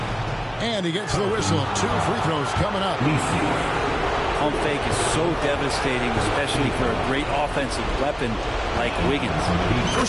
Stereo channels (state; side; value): identical; both; correlation 1.00